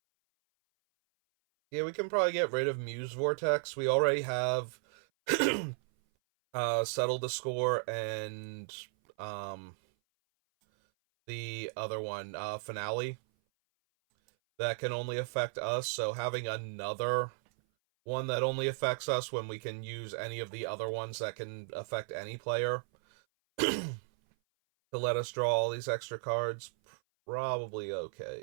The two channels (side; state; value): left; silent; 55 dB below the other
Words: Yeah, we can probably get rid of Muse Vortex. We already have Settle the Score and um, the other one, Finale. That can only affect us, so having another one that only affects us when we can use any of the other ones that can affect any player to let us draw all these extra cards, probably